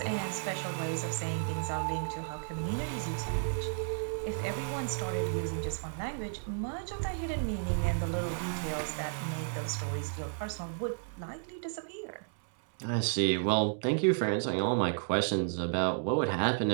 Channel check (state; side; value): silent; left; digital silence